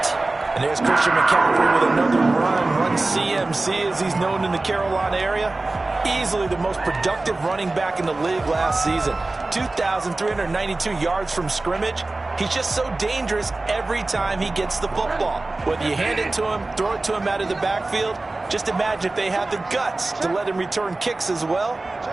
And there's Christian McCaffrey with another run CMC as he's known in the Carolina area. Easily the most productive running back in the league last season. 2,392 yards from scrimmage. He's just so dangerous every time he gets the football. Whether you hand it to him, throw it to him out of the backfield, just imagine if they have the guts to let him return kicks as well.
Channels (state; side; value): quieter; left; 3.1 dB